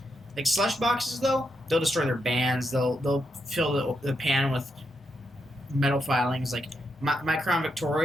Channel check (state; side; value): normal; both; correlation 0.82